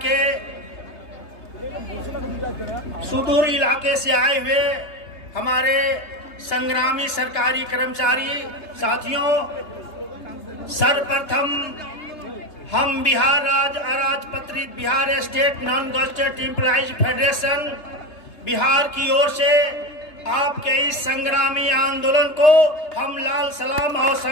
के सुदूर इलाके से आए हुए हमारे संग्रामी सरकारी कर्मचारी साथियों, सर्वप्रथम हम बिहार राज्य अराजपत्रित Bihar state non gazetted employees federation Bihar की ओर से आपके इस संग्रामी आंदोलन को हम लाल सलाम और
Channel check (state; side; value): late; right; 3.3 ms